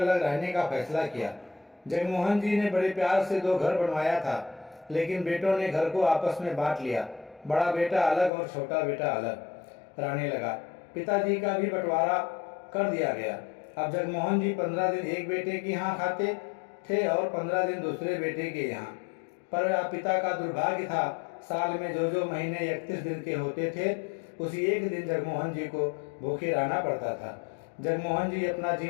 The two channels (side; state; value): right; drops out; at 8.3 s